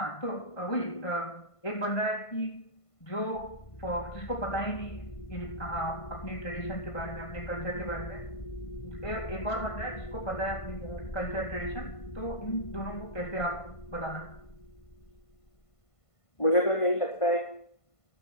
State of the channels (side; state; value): right; late; 1.5 ms